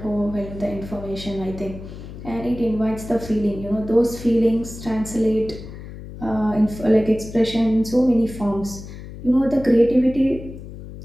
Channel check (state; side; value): noise; left; hum, 13 dB below the sound